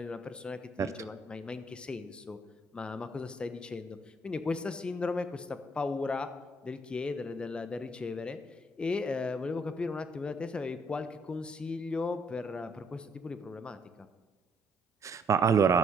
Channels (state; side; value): normal; both; correlation 0.68